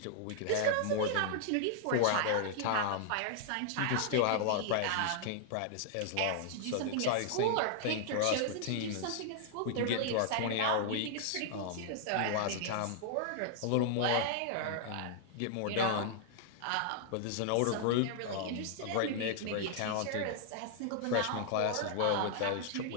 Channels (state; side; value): different; both; correlation -0.01